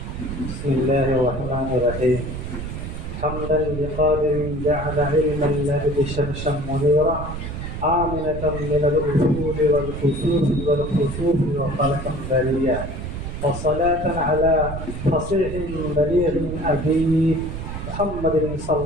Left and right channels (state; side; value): noise; right; rumble, 7 dB below the sound